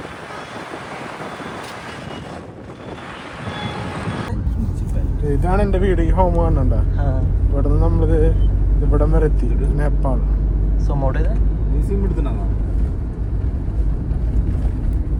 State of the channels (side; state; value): both; identical; correlation 1.00